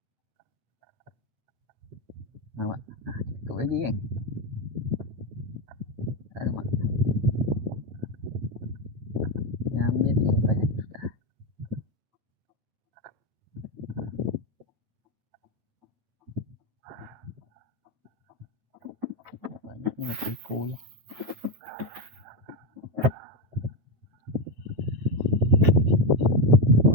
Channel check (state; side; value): late; left; 9.1 ms